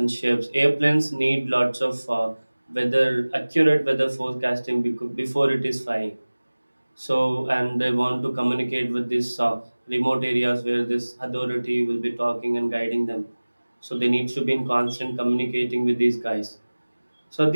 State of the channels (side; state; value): both; inverted; correlation -1.00